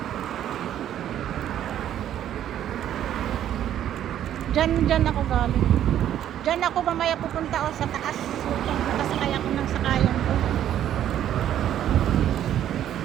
Diyan ako galing. Diyan ako mamaya pupunta sa taas. Nakasakay ako ng sakayan ko.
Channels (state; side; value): quieter; left; 11.0 dB